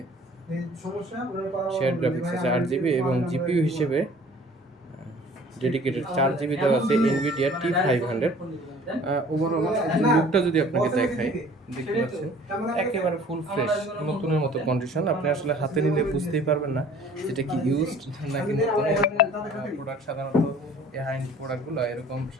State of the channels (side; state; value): both; normal; correlation 0.50